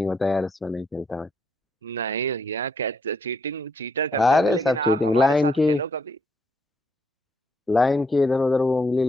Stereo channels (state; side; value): normal; both; correlation 0.74